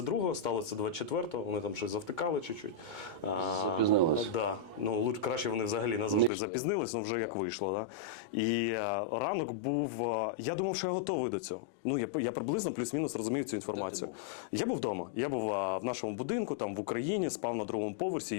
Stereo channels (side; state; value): right; drops out; at 6.3 s